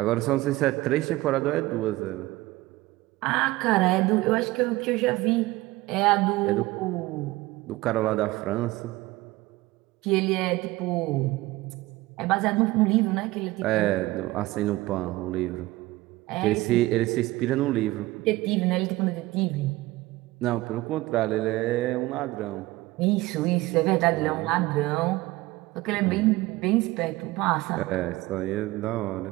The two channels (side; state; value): left; quieter; 19.1 dB